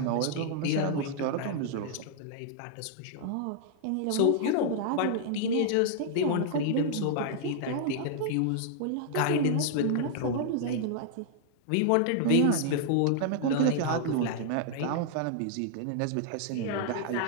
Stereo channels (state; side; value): different; both; correlation -0.01